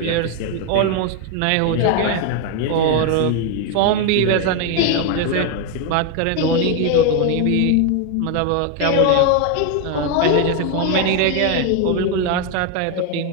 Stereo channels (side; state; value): both; different; correlation 0.01